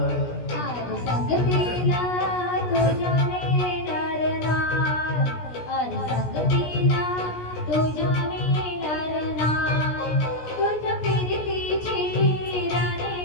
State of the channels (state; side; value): late; right; 17 ms